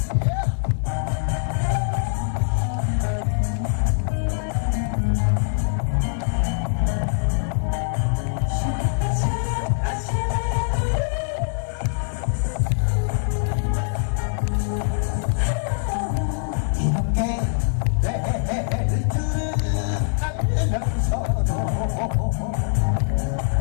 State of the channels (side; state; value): right; silent; 61 dB below the other